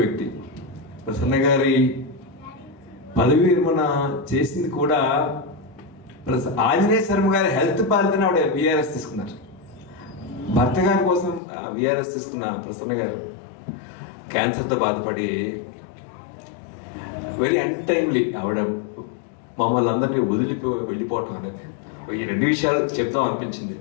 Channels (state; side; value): drops out; right; at 11.4 s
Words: ప్రసన్న గారి పదవి విరమణ చేసింది కూడా ఆంజనేయ శర్మ గారి హెల్త్ బాధ్యతను ఆవిడ VRS తీసుకున్నారు. భర్త గారి కోసం VRS తీసుకున్న ప్రసన్న గారు క్యాన్సర్తో బాధపడి వెరీ అన్టైమ్లీ ఆవిడ మమ్మల్ని అందరినీ వెళ్ళిపోవటం అనేది ఈ రెండు విషయాలు చెప్తాం అనిపించింది.